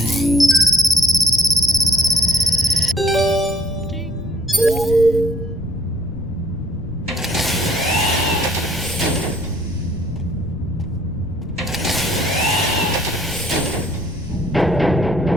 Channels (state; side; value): noise; left; rumble, 12 dB below the sound